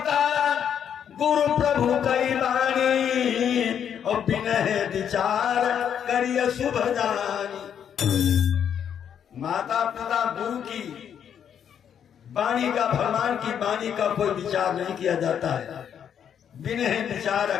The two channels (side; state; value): right; quieter; 8.6 dB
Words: गुरु प्रभु कई वाणी और बिनह विचार करिय शुभ जानी। माता पिता गुरु की वाणी का, भगवान की वाणी का कोई विचार नहीं किया जाता है, बिनह विचार